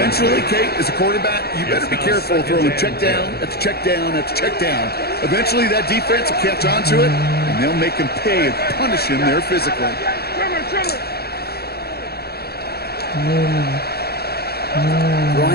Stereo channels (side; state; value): right; late; 0.46 ms